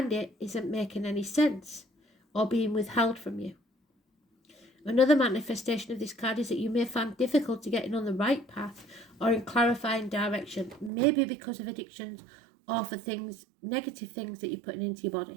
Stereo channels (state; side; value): drops out; left; at 10.9 s